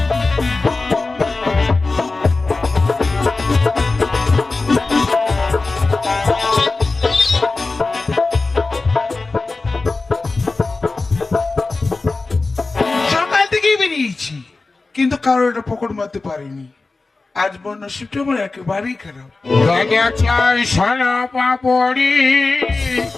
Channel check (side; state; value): right; quieter; 3.6 dB